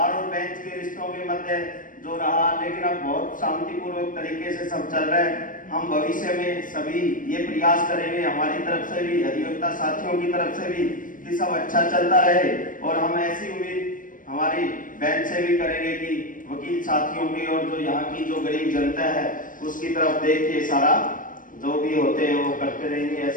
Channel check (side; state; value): right; late; 0.39 ms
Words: और बेंच के रिश्तों के मध्य जो रहा, लेकिन अब बहुत शांतिपूर्वक तरीके से सब चल रहा है। हम भविष्य में सभी ये प्रयास करेंगे, हमारी तरफ से भी, अधिवक्ता साथियों की तरफ से भी, कि सब अच्छा चलता रहे। और हम ऐसी उम्मीद हमारी बेंच से भी करेंगे कि वकील साथियों की और जो यहाँ की जो गरीब जनता है उसकी तरफ देख के सारा जो भी होते हैं वो करते रहेंगे,